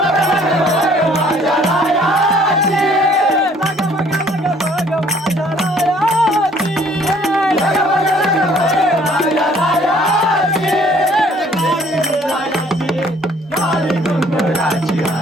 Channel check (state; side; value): normal; both; correlation 0.58